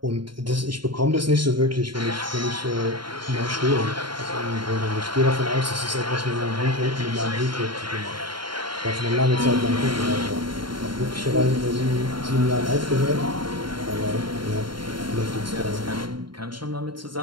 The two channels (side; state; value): left; late; 0.72 ms